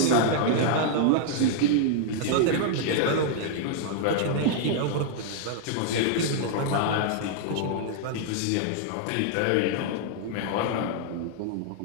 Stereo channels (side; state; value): both; different; correlation -0.01